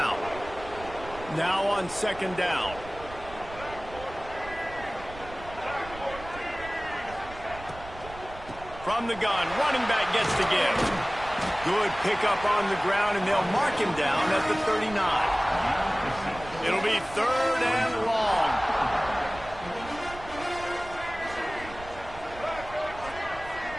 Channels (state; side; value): noise; right; rumble, 16 dB below the sound